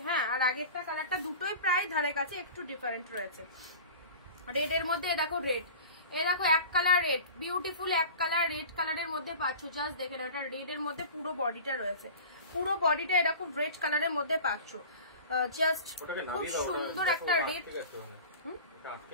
হ্যাঁ, আর আগেরটা কালারটা দুটোই প্রায় ধারে কাছে একটু ডিফারেন্ট রয়েছে। রেড এর মধ্যে দেখো রেড, এ দেখো এক কালার রেড, বিউটিফুল এক কালার রেড কালারের মধ্যে পাচ্ছ। জাস্ট দেখে নাও, এটা রেড এর মধ্যে পুরো বডিটা রয়েছে, পুরো বডিটা এরকম রেড কালারের মধ্যে পাচ্ছ। জাস্ট খুব সুন্দর একটা রেড,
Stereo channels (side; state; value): both; inverted; correlation -0.37